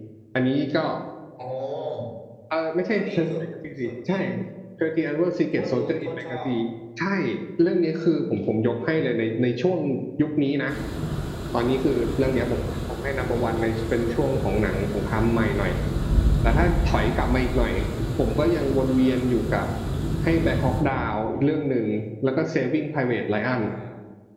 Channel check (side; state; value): both; identical; correlation 1.00